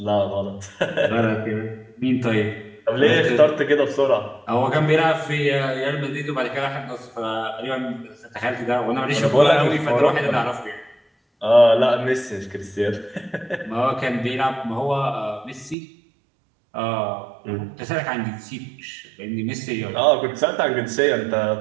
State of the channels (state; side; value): drops out; left; at 15.8 s